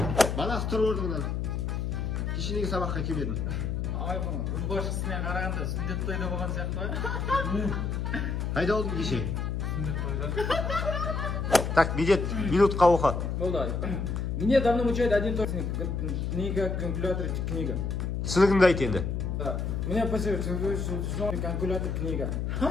Баласы тұр орныңнан. Кешенегі сабаққа келмедім. Ай, бұны, ұлбашқысына қарағанда сүндет тойда болған сияқты ба? Қайда болдың кеше? Сүндет тойда. Так, Медет, минутқа оқы. Болды. Мне давно мучает один только книга, калькулятор, книга. Түсінігіңді айт енді. Меня посылают, калькулятор, книга.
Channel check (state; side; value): noise; left; hum, 1 dB below the sound